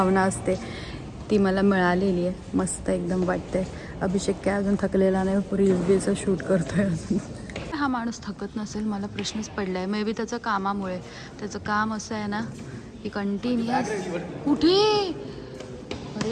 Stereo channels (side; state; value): both; identical; correlation 1.00